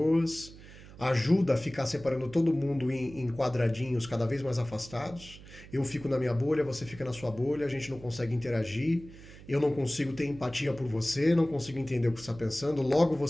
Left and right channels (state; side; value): noise; right; hum, 18 dB below the sound